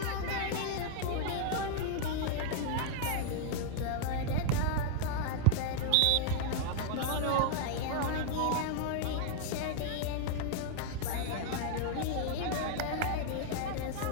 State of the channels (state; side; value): different; both; correlation 0.00